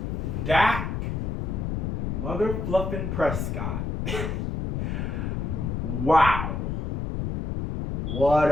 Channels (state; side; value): noise; left; rumble, 2 dB below the sound